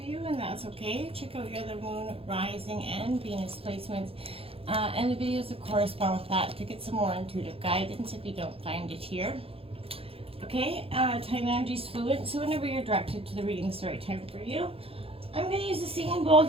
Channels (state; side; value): late; left; 0.27 ms